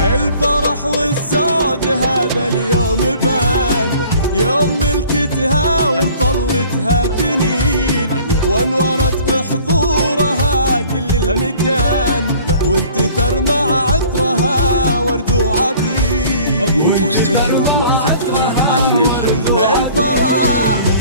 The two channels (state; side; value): inverted; both; correlation -0.51